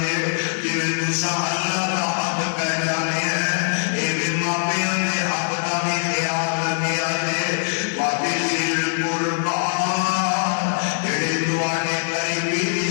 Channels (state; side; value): silent; right; 64 dB below the other